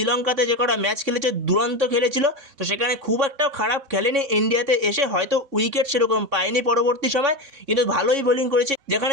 যে কটা ম্যাচ খেলেছে দুরন্ত খেলেছিল। তো সেখানে খুব একটা খারাপ খেলেনি, ইন্ডিয়াতে এসে হয়তো উইকেট সেরকম পায়নি পরবর্তী সময়, কিন্তু ভালোই বোলিং করেছে,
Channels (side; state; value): left; late; 3.6 ms